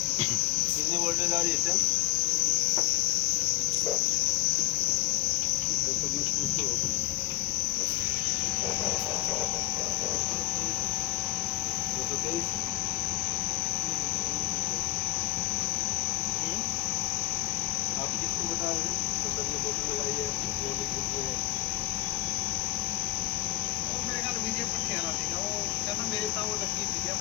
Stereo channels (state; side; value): quieter; right; 16.9 dB